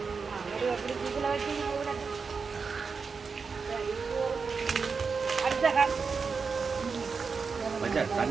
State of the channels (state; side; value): quieter; left; 5.1 dB